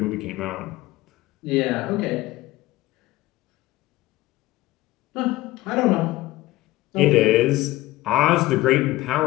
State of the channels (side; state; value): right; quieter; 17.5 dB